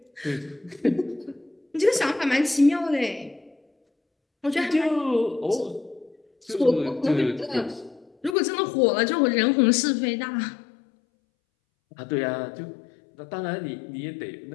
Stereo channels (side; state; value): right; drops out; at 8.3 s